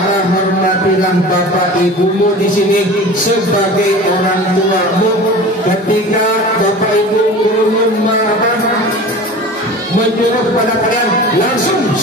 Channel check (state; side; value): normal; both; correlation 0.37